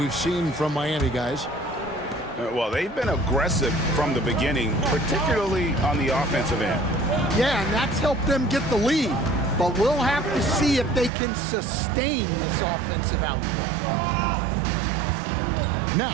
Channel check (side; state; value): left; drops out; at 11.1 s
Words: seen from Miami, guys. Well, they've been aggressive from the beginning, particularly on the offensive end. Yeah, and that's helped them get the lead. But we'll have to see if they can sustain this offensive output.